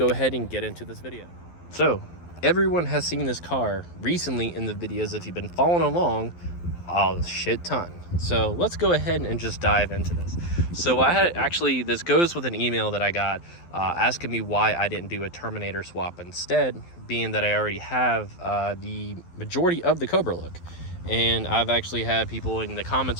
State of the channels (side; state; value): right; late; 12 ms